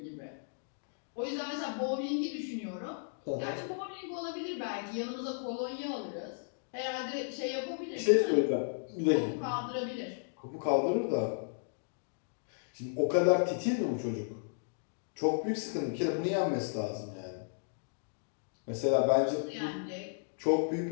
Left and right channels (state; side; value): silent; right; digital silence